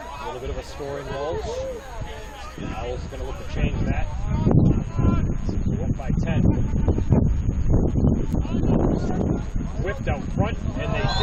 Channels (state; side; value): identical; both; correlation 1.00